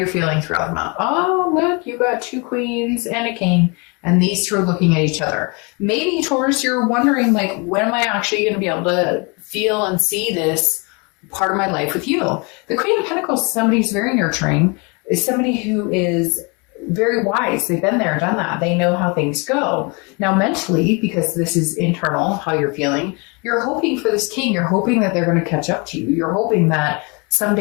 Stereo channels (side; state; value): right; quieter; 30.8 dB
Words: feeling throughout the month. Oh, look, you got 2 queens and a king, and these two are looking at each other. Maybe, Taurus, you're wondering, like, when am I actually going to be able to feel and see this part of my life with you? The Queen of Pentacles is somebody who's very nurturing, is somebody who is very wise. They've been there, done that. They know how things go. Now, mentally, because this is internal, how you're feeling, you're hoping for this king. You're hoping that they're going to catch up to you. You're hoping that